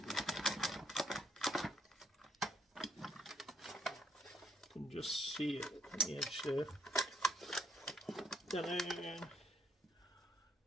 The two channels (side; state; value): both; normal; correlation 0.68